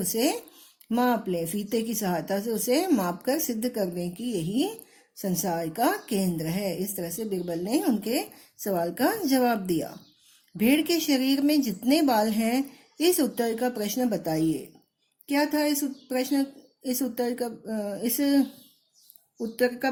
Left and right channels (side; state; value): both; identical; correlation 1.00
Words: माप लें, फीते की सहायता से उसे माप कर सिद्ध करने की यही संसार का केंद्र है। इस तरह से बीरबल ने उनके सवाल का जवाब दिया। भेड़ के शरीर में जितने बाल हैं, इस उत्तर का प्रश्न बताइए। क्या था इस उत्तर का